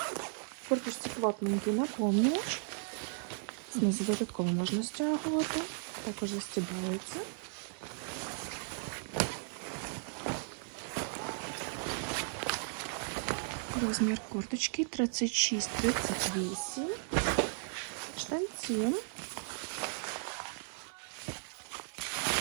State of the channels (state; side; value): silent; left; 54 dB below the other